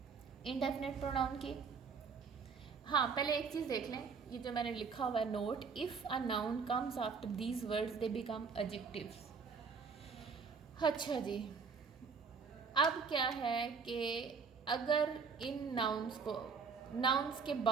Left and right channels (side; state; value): left; quieter; 5.4 dB